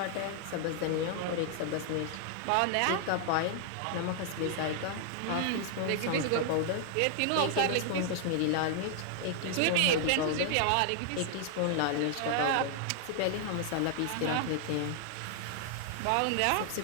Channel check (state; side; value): different; both; correlation 0.00